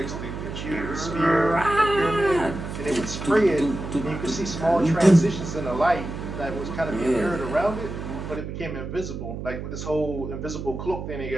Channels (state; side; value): noise; right; hum, 7 dB below the sound